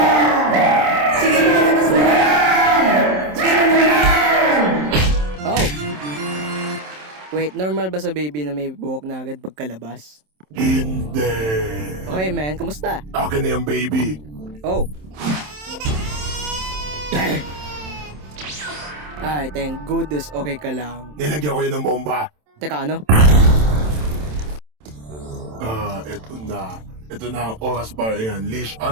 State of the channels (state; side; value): late; left; 27 ms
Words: Sige na, labas mo na yan! Sige na naman! Oh! Wait, normal ba sa baby na may buhok na agad pagkalabas? Hindi. Okay, man. Kamusta? Akin na yung baby. Oh. Ay, thank goodness. Okay ka lang. Nilagyan ko yun ng bomba. Teka, ano? Eto na. Ito na ang oras para i-unleash